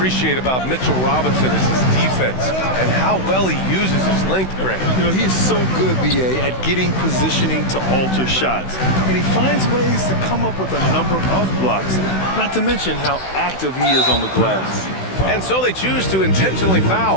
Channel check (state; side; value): late; right; 16 ms